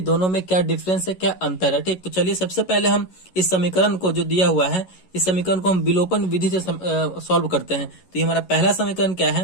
में क्या डिफरेंस है, क्या अंतर है। ठीक, तो चलिए सबसे पहले हम इस समीकरण को जो दिया हुआ है, इस समीकरण को हम विलोपन विधि से सॉल्व करते हैं। तो ये हमारा पहला समीकरण क्या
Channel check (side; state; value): right; late; 11 ms